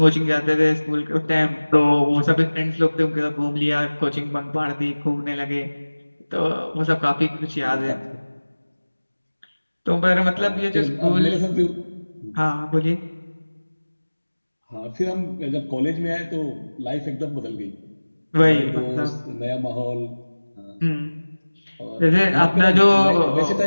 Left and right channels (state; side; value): inverted; both; correlation -1.00